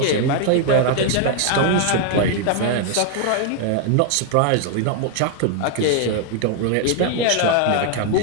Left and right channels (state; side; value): different; both; correlation 0.01